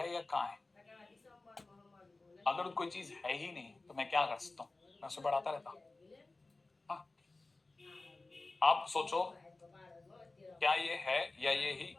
या कहाँ है? अगर कोई चीज है ही नहीं तो मैं क्या कर सकता हूँ? मैं उसे पढ़ाता रहता। हाँ, आप सोचो, क्या ये है या ये ही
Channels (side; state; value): right; quieter; 3.3 dB